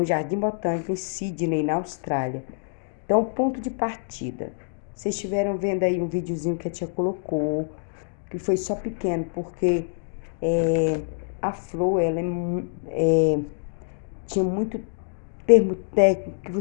jardim botânico em Sydney, na Austrália. Então, ponto de partida. Vocês estiveram vendo aí um videozinho que a tia colocou, que foi só pequeno, porque a flor, ela tinha muito termo técnico que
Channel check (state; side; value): silent; right; digital silence